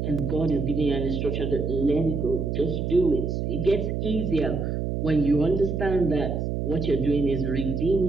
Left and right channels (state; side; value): noise; right; hum, 1 dB below the sound